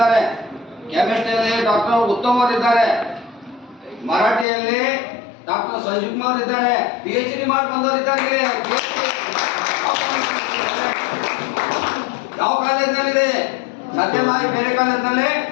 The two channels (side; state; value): right; drops out; at 4.5 s